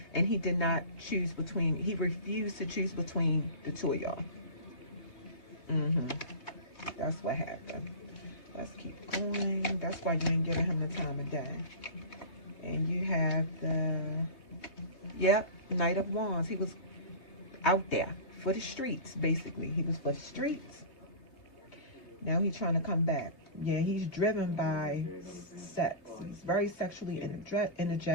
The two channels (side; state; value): right; late; 3.3 ms